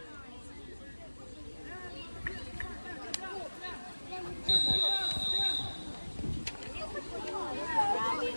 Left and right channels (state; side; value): inverted; both; correlation -1.00